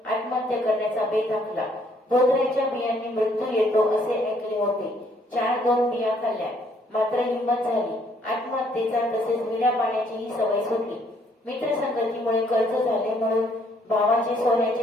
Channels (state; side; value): normal; both; correlation 0.66